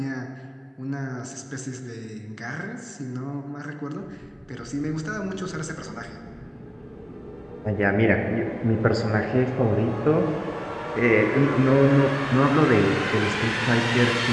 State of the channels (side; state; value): both; identical; correlation 1.00